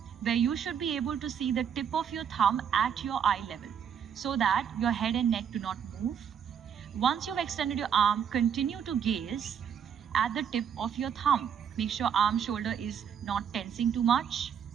where you should be able to see the tip of your thumb at your eye level, so that your head and neck do not move. Once you've extended your arm, continue to gaze at the tip of your thumb. Make sure arm shoulder is not tensing too much.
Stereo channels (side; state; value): left; quieter; 8.1 dB